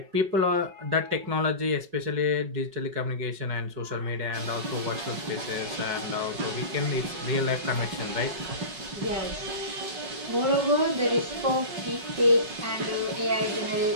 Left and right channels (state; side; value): late; left; 5.3 ms